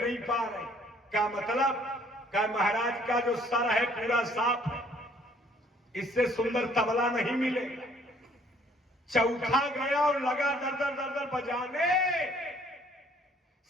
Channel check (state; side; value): normal; both; correlation 0.60